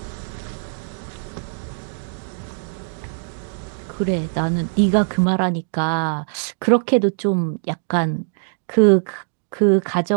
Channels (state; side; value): silent; left; digital silence